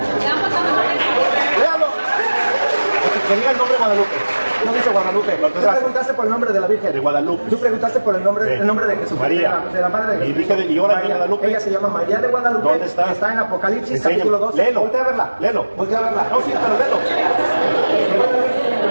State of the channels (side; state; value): both; inverted; correlation -1.00